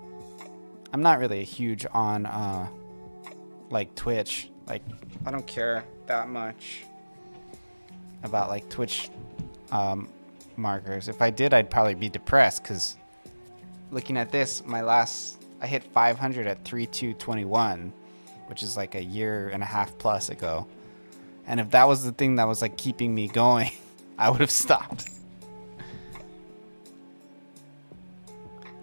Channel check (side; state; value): both; inverted; correlation -1.00